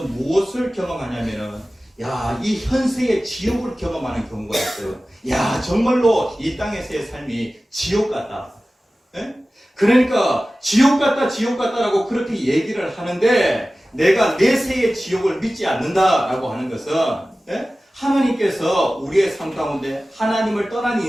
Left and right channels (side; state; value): both; normal; correlation 0.96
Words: 무엇을 경험하냐면은, 야, 이 현세의 지옥을 경험하는 경우가 있어요. 야, 정말로 이 땅에서의 삶이 지옥 같다. 그러니까 지옥 같다라고 그렇게 얘기를 하는데, 내가 내세의 지옥을 믿지 않는다라고 하는 것은 하나님께서 우리의 삶 가운데 하나님을 떠난